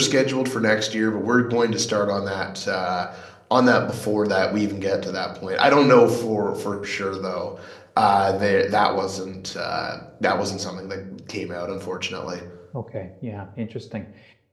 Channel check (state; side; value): identical; both; correlation 1.00